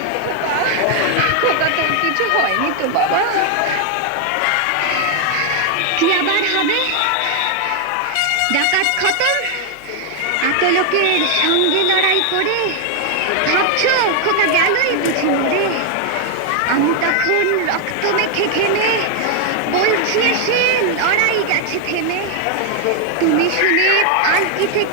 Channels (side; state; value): both; different; correlation 0.00